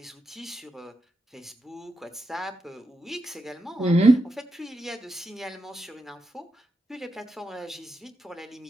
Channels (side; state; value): both; normal; correlation 0.86